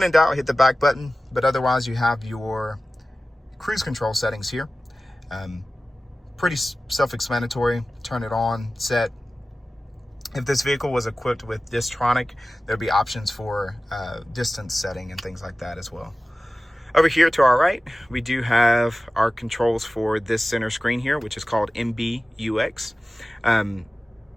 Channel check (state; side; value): normal; both; correlation 0.96